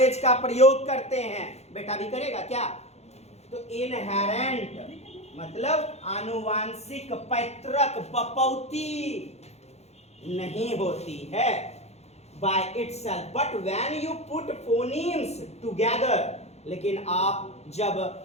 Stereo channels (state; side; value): late; right; 0.31 ms